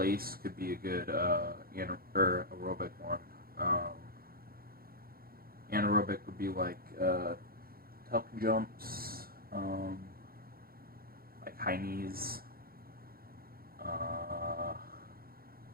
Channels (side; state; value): left; late; 0.43 ms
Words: could be a good aerobic one. Anaerobic would be like tuck jumps, like high knees.